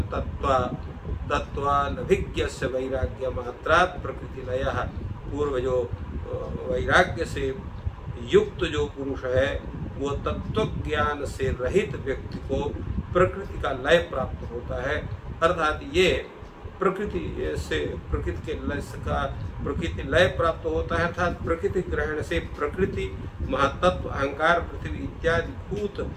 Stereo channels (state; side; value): identical; both; correlation 1.00